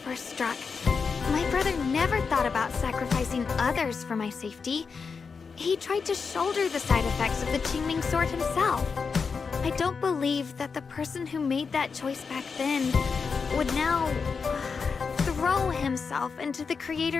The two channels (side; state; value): right; quieter; 5.3 dB